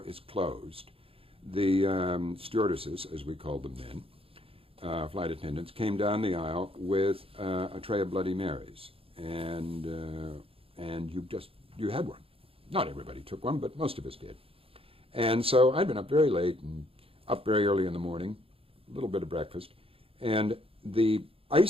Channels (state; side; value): late; left; 0.27 ms